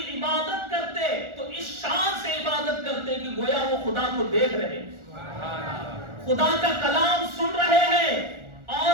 عبادت کرتے, تو اس شان سے عبادت کرتے کہ گویا وہ خدا کو دیکھ رہے, خدا کا کلام سن رہے ہیں,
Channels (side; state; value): left; late; 1.4 ms